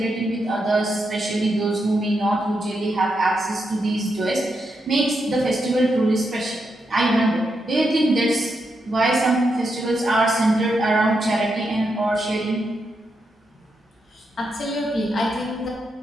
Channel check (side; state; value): both; normal; correlation 0.83